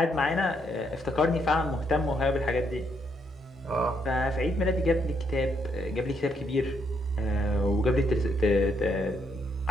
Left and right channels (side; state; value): both; normal; correlation 0.75